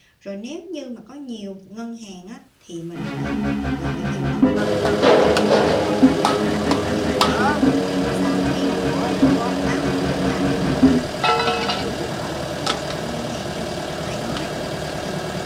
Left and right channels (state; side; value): identical; both; correlation 1.00